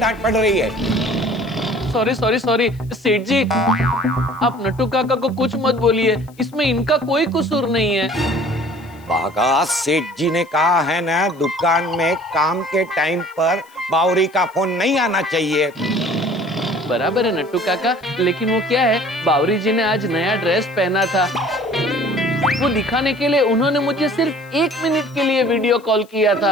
पड़ रही है। सॉरी सेठ जी, आप नट्टू काका को कुछ मत बोलिए, इसमें इनका कोई कसूर नहीं है। बागा, सेठ जी ने कहा है ना, दुकान में काम के टाइम पर बावरी का फोन नहीं आना चाहिए। बराबर है नट्टू काका, लेकिन वो क्या है, बावरी जी ने आज नया ड्रेस पहना था, वो दिखाने के लिए उन्होंने मुझे सिर्फ 1 मिनट के लिए वीडियो कॉल किया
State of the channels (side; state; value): left; noise; hiss, 29 dB below the sound